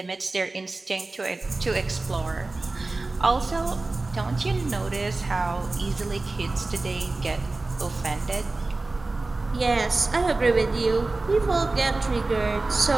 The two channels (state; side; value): quieter; left; 3.3 dB